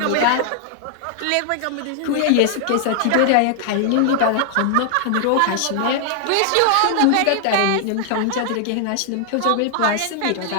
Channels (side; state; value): both; different; correlation 0.00